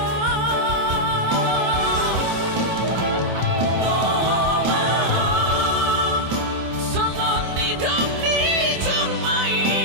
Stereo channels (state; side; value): late; left; 26 ms